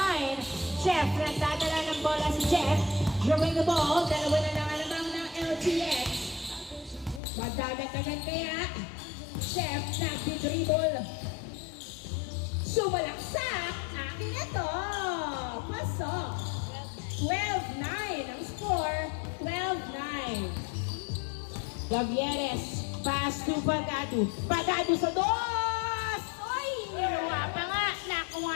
Jeff, nagdadala ng bola si Jeff. Drawing the ball. Dalawa na lang alamang ng LTX. Magdadagdagan kaya. Chef, nagdi-dribble. Sumalaksak. Akin na to. Pasok. 12-9 ang score. 12-9. Gavieres. Pass to Pagado. Pagado sa dos! Oy! Niluwa pa nga. Nakuha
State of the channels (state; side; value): drops out; right; at 7.2 s